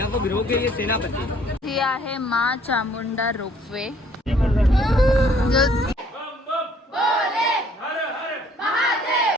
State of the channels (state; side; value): normal; both; correlation 0.60